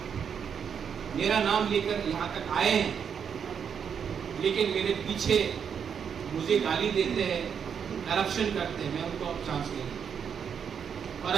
लेकर यहाँ तक आए हैं लेकिन मेरे पीछे मुझे गाली देते हैं करप्शन करते हैं मैं उनको अब चांस नहीं दूंगा और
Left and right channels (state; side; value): quieter; left; 7.4 dB